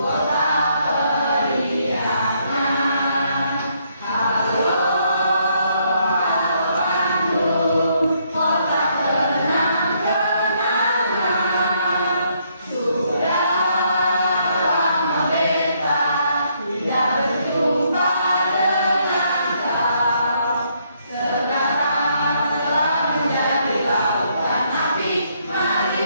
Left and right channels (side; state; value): both; inverted; correlation -0.72